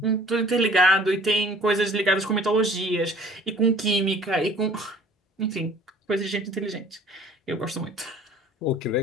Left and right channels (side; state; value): both; normal; correlation 0.52